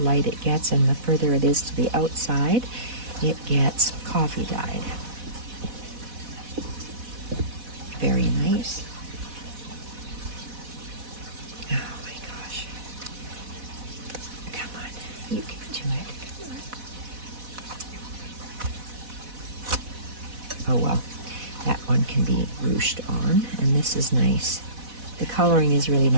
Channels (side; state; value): left; late; 4.1 ms